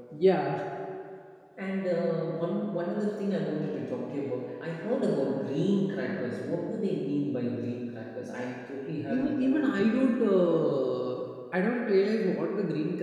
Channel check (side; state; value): both; identical; correlation 1.00